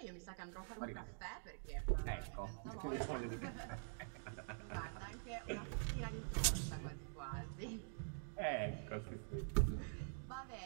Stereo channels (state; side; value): silent; left; digital silence